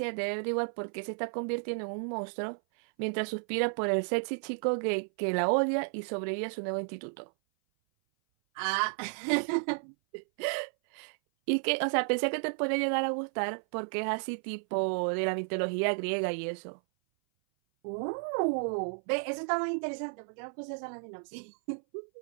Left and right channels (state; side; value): silent; left; 56 dB below the other